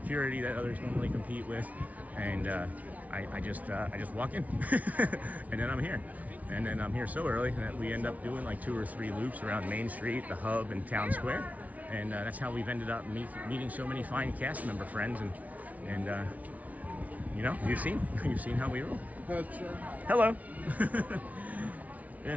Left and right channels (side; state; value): left; late; 0.071 ms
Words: that others normally compete with. And I just walk in, and then I'm here. And then I'm here so early that we end up doing like 2 or 3 loops around Main Street, the Hub, and Town Square. And that's how we've ended up meeting so many fine cast member friends. And you know, you've seen how we roll. Hello.